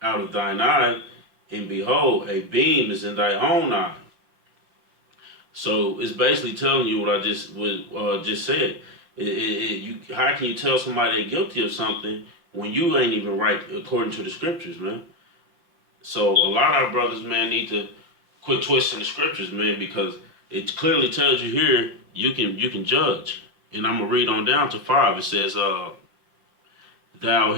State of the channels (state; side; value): late; left; 5.7 ms